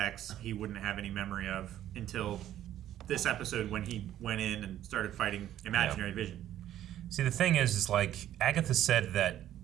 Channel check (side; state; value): left; quieter; 12.1 dB